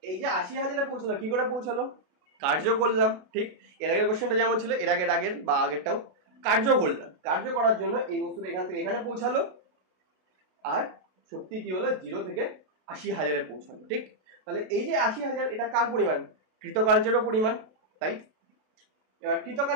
এই যে 80,000-এ পৌঁছালো, কি করে পৌঁছালো, কার্য করলাম। ঠিক, এর আগের কোশ্চেনটা যেমন ছিল, এর আগের বা আগেরটাও কার্য করলাম। কার্য করার জন্য এই বস্তুটা এখান থেকে এখানে পৌঁছালো, আর শক্তি কি হলো, 0 থেকে 80,000-এ পৌঁছালো। ঠিক, তাহলে এই যে 80,000 এটা কার পরিমাণ, কৃতকার্যেরও পরিমাণ, তাই? এবার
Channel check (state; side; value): late; left; 32 ms